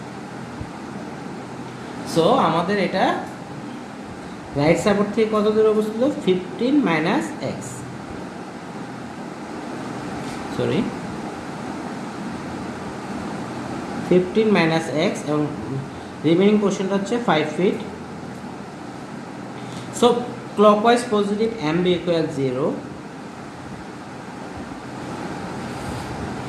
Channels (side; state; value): both; identical; correlation 1.00